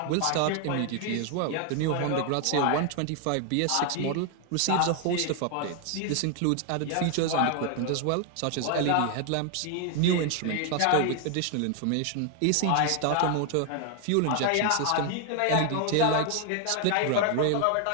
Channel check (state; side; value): different; both; correlation 0.00